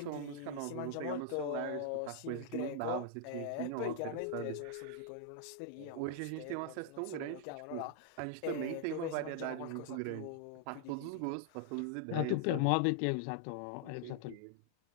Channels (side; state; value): both; different; correlation -0.01